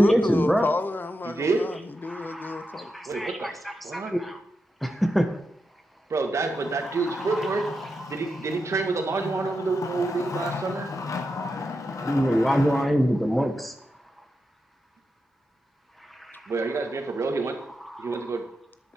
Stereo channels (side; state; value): both; normal; correlation 0.87